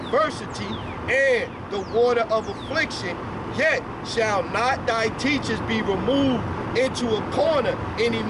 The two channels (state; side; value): identical; both; correlation 1.00